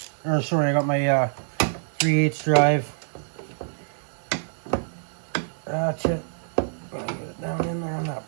or sorry, I got my 3/8 drive ratchet. Gotta get it down in there on that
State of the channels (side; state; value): left; silent; digital silence